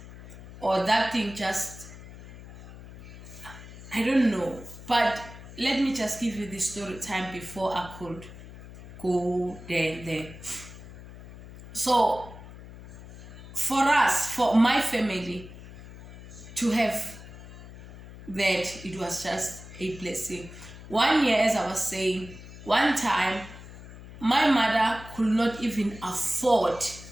or that thing just, I don't know. But let me just give you the story time before I could go there. So for us, for my family to have that, it was just a blessing. 1 year, as I was saying, one time my mother could not even afford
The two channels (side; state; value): left; noise; hum, 16 dB below the sound